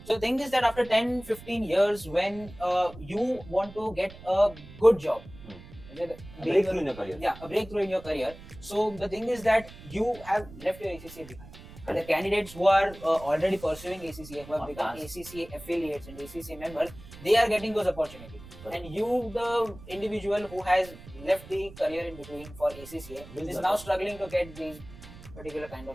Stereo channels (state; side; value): noise; right; rumble, 17 dB below the sound